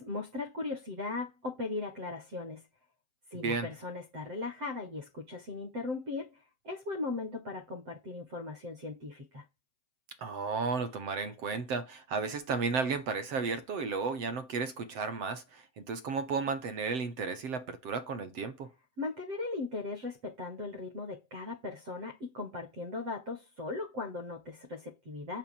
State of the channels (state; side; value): late; left; 7.7 ms